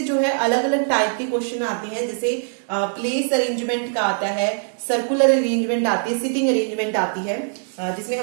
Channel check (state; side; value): silent; left; 63 dB below the other